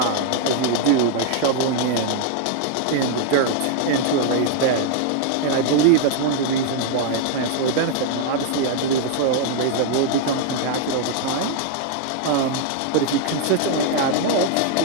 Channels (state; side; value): different; both; correlation 0.00